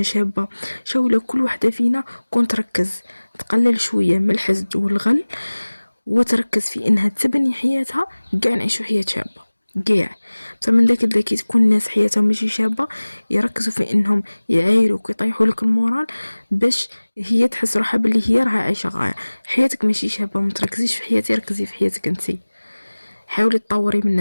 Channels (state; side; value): inverted; both; correlation -1.00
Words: شابه. شاولا كل وحده فينا كون تركز تقلل شويه من الحسد والغل، وتركز في انها تبني حياتها، كاع نعيشوا حياه شابه كاع. بصح من ذاك كي تكون الناس حياتهم ماشي شابه، يركزوا في انهم يعايروك ويطيحوا لك المورال باش هي تحس روحها باللي هي راها عايشه غايه. حياتك ماشي شابه، ما تركزيش في حياتي، ركزي في حياتك انتي، حاولي تطوري من